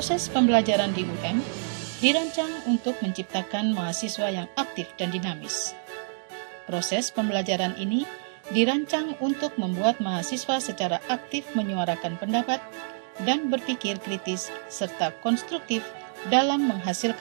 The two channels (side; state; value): left; silent; digital silence